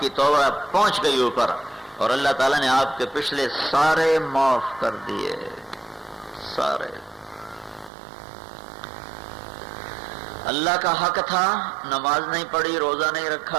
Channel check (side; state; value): left; drops out; at 7.9 s